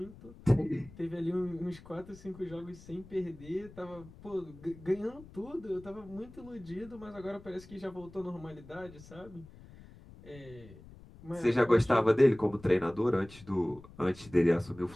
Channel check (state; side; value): noise; left; rumble, 19 dB below the sound